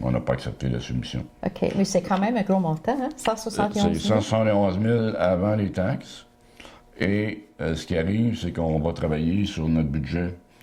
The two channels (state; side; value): identical; both; correlation 1.00